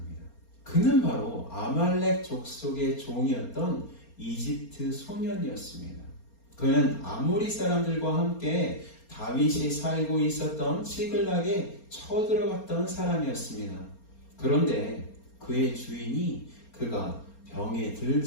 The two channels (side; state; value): right; late; 4.3 ms